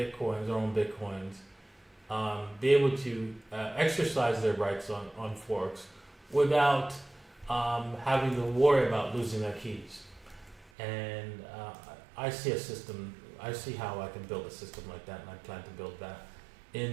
their own Bitcoins, be able to exercise their rights on forks without having to worry about losing their keys. And I see how I can build a system like that, and I plan to build that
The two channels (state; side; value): drops out; left; at 10.7 s